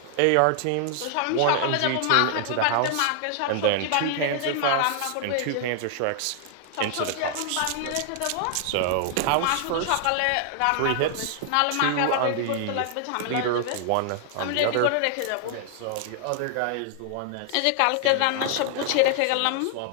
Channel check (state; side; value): different; both; correlation 0.00